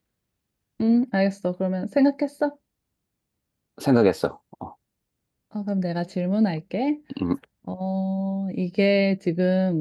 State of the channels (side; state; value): both; identical; correlation 1.00